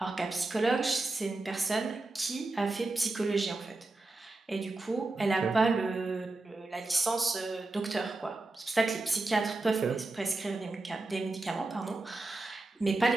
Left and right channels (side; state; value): left; quieter; 3.1 dB